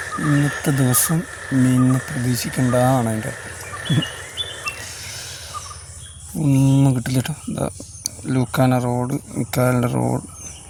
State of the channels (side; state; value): both; identical; correlation 1.00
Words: ഇന്നത്തെ ദിവസം മീനിനെ പ്രതീക്ഷിക്കേണ്ടതാണ്. അതിൻ്റെ ഒന്നും കിട്ടില്ല കേട്ടോ. എന്താ ലൂക്കാന റോഡ്, മിക്കാലിൻ്റെ റോഡ്,